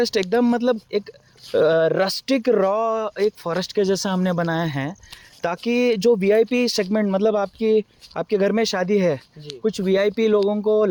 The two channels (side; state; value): both; identical; correlation 1.00